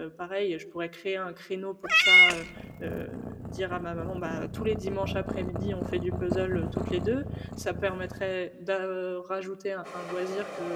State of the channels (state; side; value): identical; both; correlation 1.00